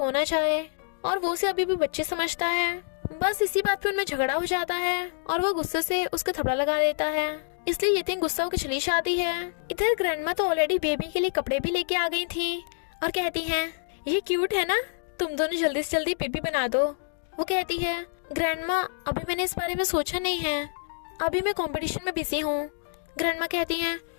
चाहे और वो उसे अभी भी बच्चे समझता है। बस इसी बात पे उनमें झगड़ा हो जाता है और वो गुस्से से उसके थपड़ा लगा देता है, इसलिए यीटिंग गुस्सा होकर चली जाती है। इधर ग्रैंडमा तो ऑलरेडी बेबी के लिए कपड़े भी लेके आ गई थी और कहती हैं ये क्यूट है ना, तुम दोनों जल्दी से जल्दी बेबी बना दो। वो कहती है ग्रैंडमा अभी मैंने इस बारे में सोचा नहीं है, अभी मैं कंपटीशन में बिजी हूँ। ग्रैंडमा कहती हैं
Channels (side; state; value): right; silent; digital silence